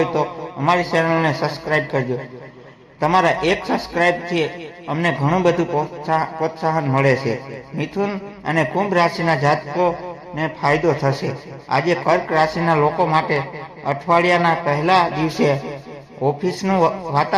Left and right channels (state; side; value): identical; both; correlation 1.00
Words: તો અમારી ચેનલને સબસ્ક્રાઇબ કરજો। તમારા એક સબસ્ક્રાઇબથી અમને ઘણું બધું પ્રોત્સાહન મળે છે। મિથુન અને કુંભ રાશિના જાતકોને ફાયદો થશે। આજે કર્ક રાશિના લોકો માટે અઠવાડિયાના પહેલા દિવસે ઓફિસનું